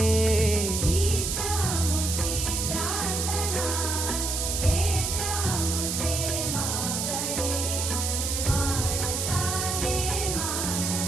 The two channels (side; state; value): right; noise; hiss, 1 dB below the sound